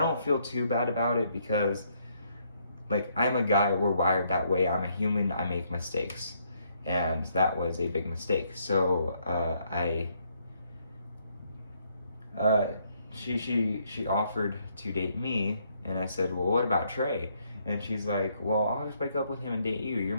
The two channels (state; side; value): inverted; both; correlation -0.71